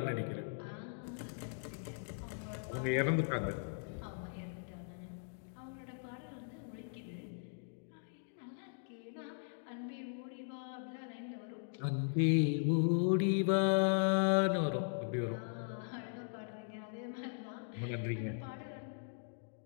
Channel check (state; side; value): silent; right; digital silence